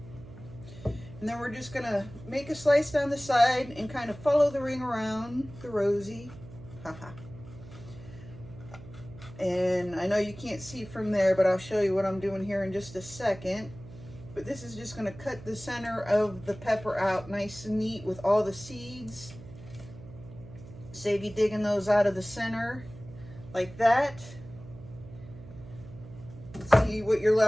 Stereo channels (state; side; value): noise; right; hum, 16 dB below the sound